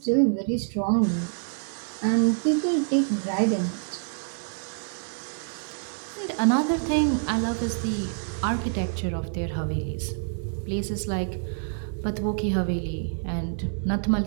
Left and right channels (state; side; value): silent; left; 60 dB below the other